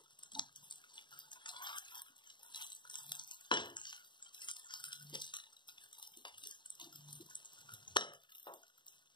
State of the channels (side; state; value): right; late; 0.23 ms